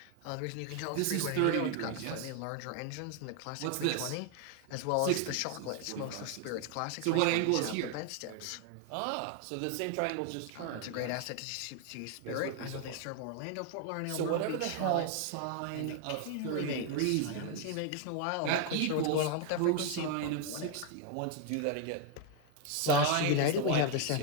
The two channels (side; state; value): both; different; correlation 0.01